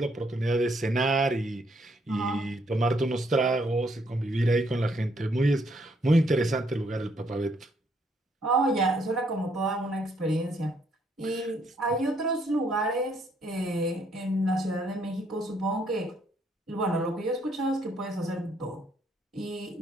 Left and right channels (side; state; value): both; normal; correlation 0.70